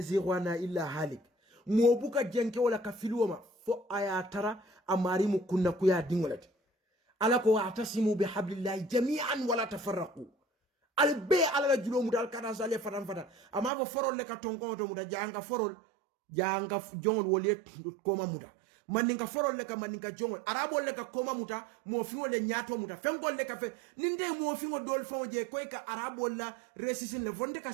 illa halik mo buka jenke wala ka filwoma fo aya tara amari mu kunna kuya dingolati ala ko atasimu bihablillahi jami'an wala tafarraqu al be ala la julo muta al kana sale fatan fata ama bo forol le ka tonko to muta janga forol janga jongol wole koma muta maninka forol le ka maninka jongol arabo le ka koma muta mo fiwo le nyato muta fengol le ka fe ninde mo fiwo dol fon je koy ka arabo la resisin le vonde ka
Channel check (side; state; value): left; drops out; at 13.7 s